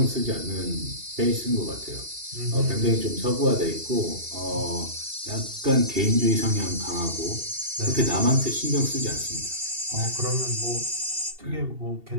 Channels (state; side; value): late; left; 2.7 ms